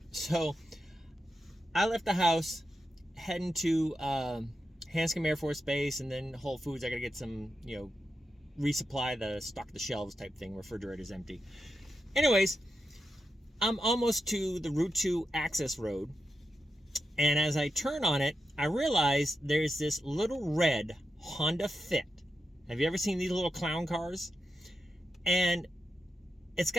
So, I left the house, heading to Hanscom Air Force Base, and then Whole Foods. I got to get some, resupply the stock the shelves type thing. Refrigerator's empty. Anyways. I'm almost to the Route 2 access road, and as I turn on it, I realize there's this little red Honda Fit. Have you ever seen these little clown cars? And it's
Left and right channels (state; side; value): normal; both; correlation 0.88